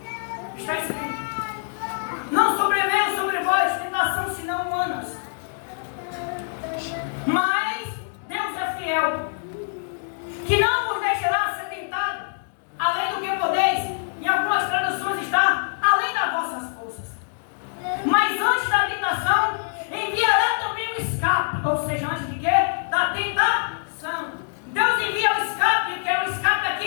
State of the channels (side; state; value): right; silent; digital silence